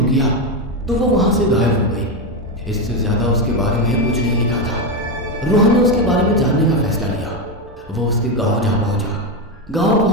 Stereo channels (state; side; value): normal; both; correlation 0.10